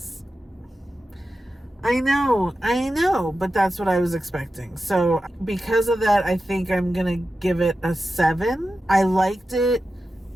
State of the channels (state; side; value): normal; both; correlation 0.92